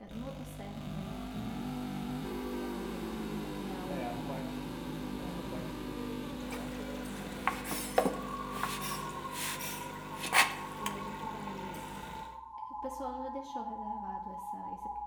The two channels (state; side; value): identical; both; correlation 1.00